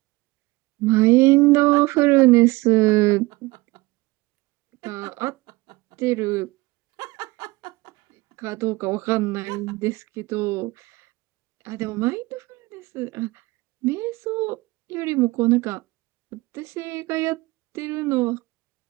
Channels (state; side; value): quieter; left; 21.8 dB